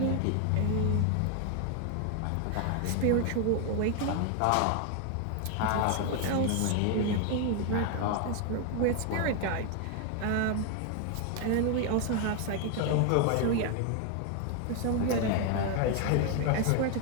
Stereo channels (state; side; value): different; both; correlation 0.01